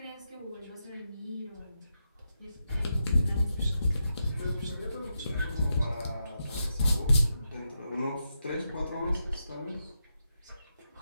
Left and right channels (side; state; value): both; inverted; correlation -0.85